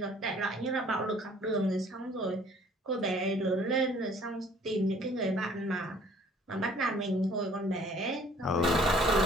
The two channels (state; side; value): normal; both; correlation 0.56